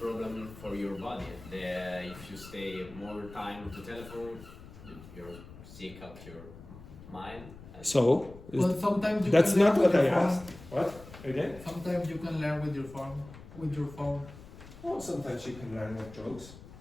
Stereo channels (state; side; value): noise; left; rumble, 17 dB below the sound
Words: problem for your body. If you stay more time to telephone, you're sick of your mind. So, But sometimes you that's can not learn what with I your phone. asked. What? Again? Sometimes you can learn with your phone. Oh, sometimes you can learn with drugs.